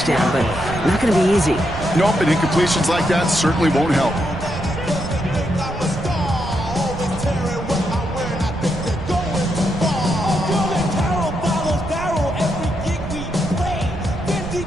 but not going to be easy. Nope, and incompletions like that certainly won't help.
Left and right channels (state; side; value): noise; right; rumble, 10 dB below the sound